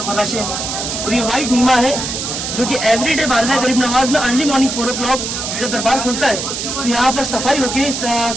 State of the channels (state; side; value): noise; right; hiss, 4 dB below the sound